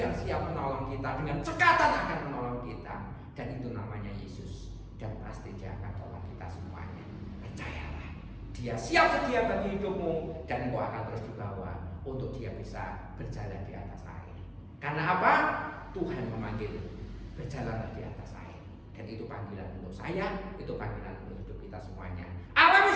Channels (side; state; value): both; identical; correlation 1.00